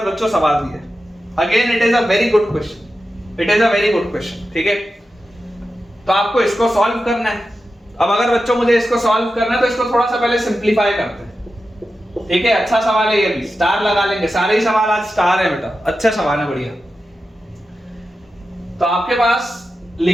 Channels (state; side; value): normal; both; correlation 0.91